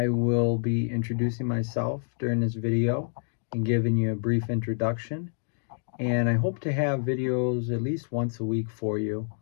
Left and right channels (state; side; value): silent; right; 60 dB below the other